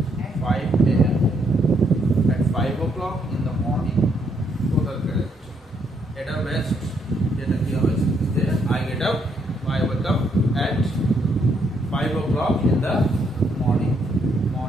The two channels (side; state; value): both; normal; correlation 0.73